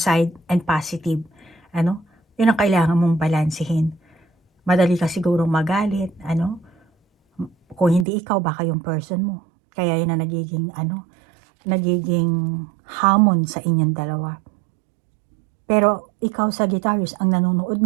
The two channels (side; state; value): left; drops out; at 8.1 s